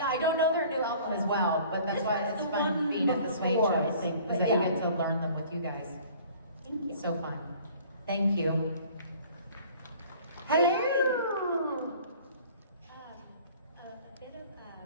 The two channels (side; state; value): both; inverted; correlation -0.50